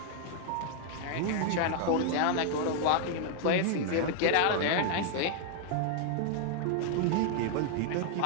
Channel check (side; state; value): both; different; correlation 0.00